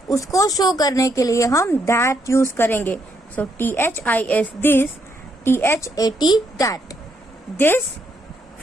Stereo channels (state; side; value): normal; both; correlation 0.75